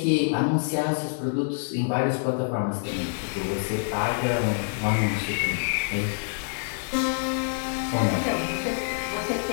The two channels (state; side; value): silent; right; digital silence